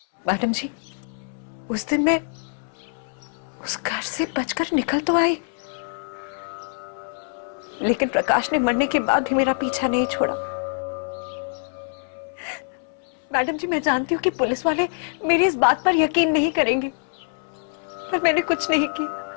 मैडम जी, उस दिन मैं उस घर से बचकर निकल तो आई, लेकिन प्रकाश ने मरने के बाद भी मेरा पीछा नहीं छोड़ा। मैडम जी, मैं जानती हूँ कि पुलिस वाले मेरी इस बात पर यकीन नहीं करेंगे, पर मैंने कुछ नहीं किया,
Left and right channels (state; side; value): silent; right; 62 dB below the other